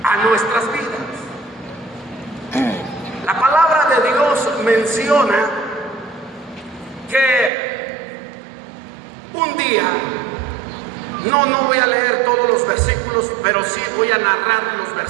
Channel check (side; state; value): left; drops out; at 7.5 s